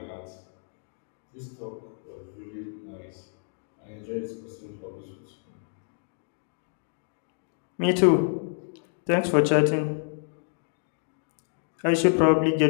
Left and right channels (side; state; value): right; silent; digital silence